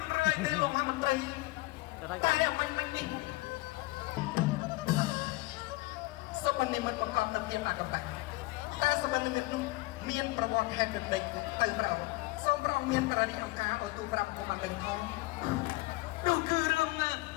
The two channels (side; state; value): right; quieter; 21.2 dB